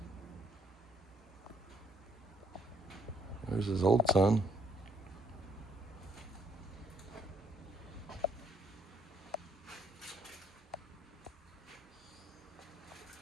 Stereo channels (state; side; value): normal; both; correlation 0.66